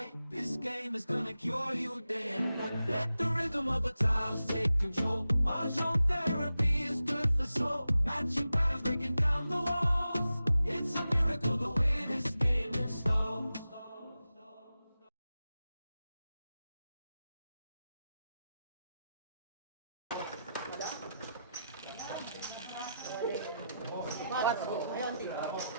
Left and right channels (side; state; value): both; inverted; correlation -0.91